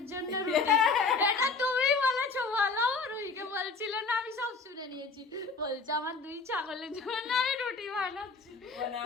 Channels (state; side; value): quieter; right; 4.2 dB